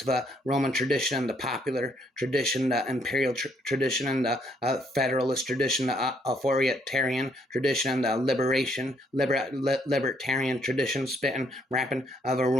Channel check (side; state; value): both; normal; correlation 0.70